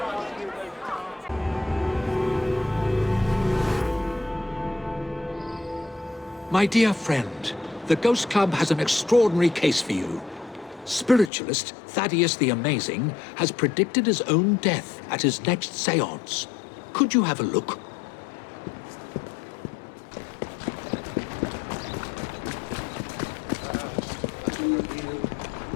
My dear friend, the Ghost Club has an extraordinary case for you. Spiritualist Thaddeus the Amazing has predicted his own death at his next seance. Could you have a look?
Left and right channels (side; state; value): right; drops out; at 11.3 s